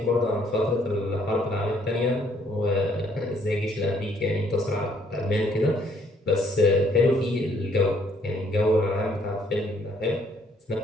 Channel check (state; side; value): normal; both; correlation 0.66